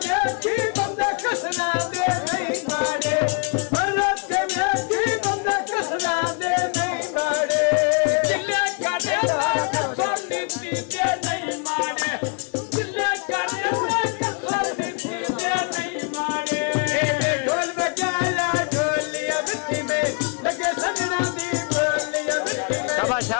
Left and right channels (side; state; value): right; quieter; 33.7 dB